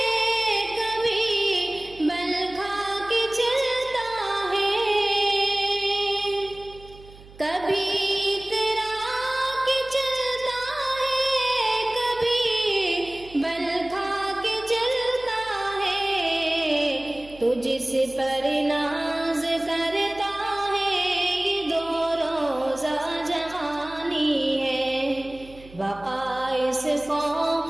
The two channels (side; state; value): right; noise; hum, 21 dB below the sound